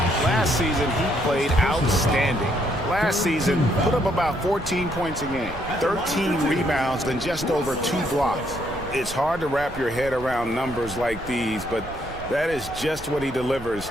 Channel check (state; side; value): noise; right; rumble, 14 dB below the sound